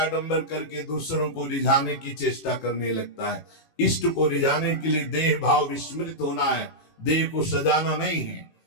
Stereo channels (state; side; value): late; right; 18 ms